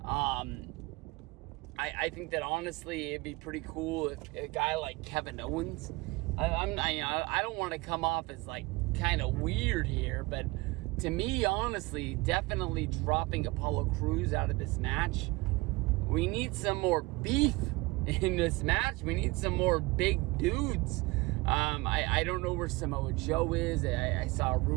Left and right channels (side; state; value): left; quieter; 23.0 dB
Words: I think that honestly it'd be pretty cool if a guy like Kevin Owens. I don't want to come off as like kind of weird here, but to me, honestly, definitely dropping Apollo Crews out of this match. We need some more beef in this match. We need some more big dudes. I don't know where Samoa Joe is. I saw a